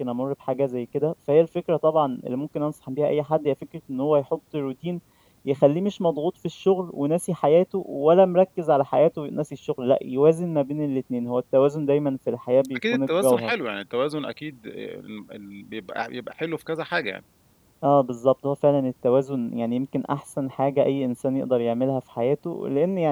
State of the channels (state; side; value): identical; both; correlation 1.00